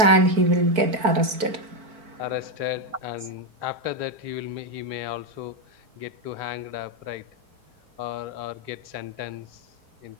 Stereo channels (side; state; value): left; late; 4.5 ms